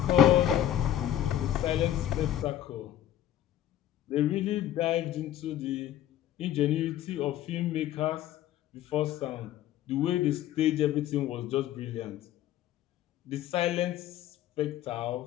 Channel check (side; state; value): right; quieter; 11.8 dB